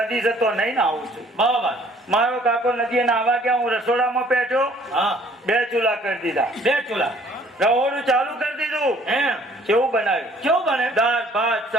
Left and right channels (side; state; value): both; normal; correlation 0.58